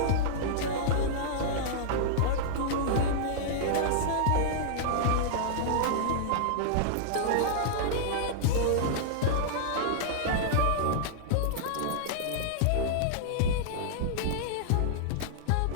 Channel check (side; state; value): both; different; correlation -0.01